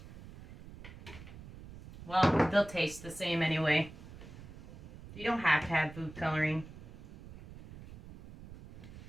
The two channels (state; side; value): noise; right; rumble, 16 dB below the sound